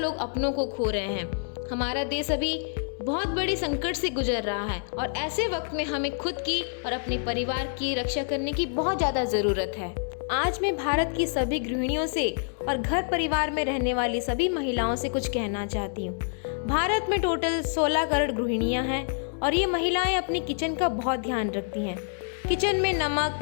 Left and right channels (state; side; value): silent; right; 60 dB below the other